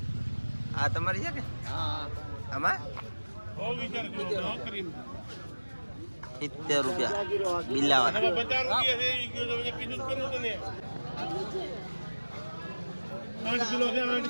આ તમારી છે કે? આમાં 70 રૂપિયા બિલ્લાવાળા.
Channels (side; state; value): both; inverted; correlation -1.00